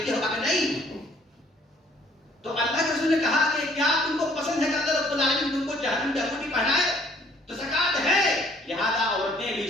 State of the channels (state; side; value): normal; both; correlation 0.60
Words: ہو؟ کہا نہیں۔ تو اللہ کے رسول نے کہا کہ کیا تم کو پسند ہے کہ اللہ رب العالمین تم کو جہنم کی انگوٹھی پہنائے؟ تو زکات ہے۔ لہذا عورتیں بھی